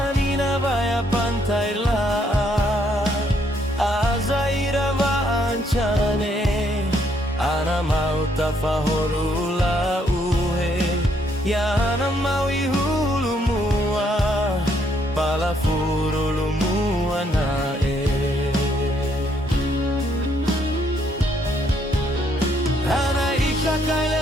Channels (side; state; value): both; normal; correlation 0.71